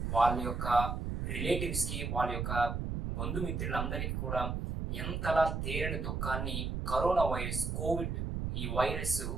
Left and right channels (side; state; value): right; noise; rumble, 2 dB below the sound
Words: వాళ్ళ యొక్క రిలేటివ్స్‌కి, వాళ్ళ యొక్క బంధుమిత్రులందరికీ కూడా ఎంతలా తీరని దుఃఖాన్ని కరోనా వైరస్, కోవిడ్ ఈ వైరస్